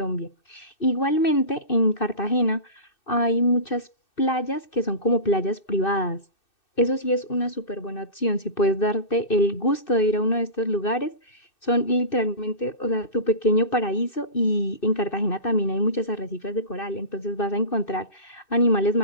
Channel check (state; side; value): late; right; 2.6 ms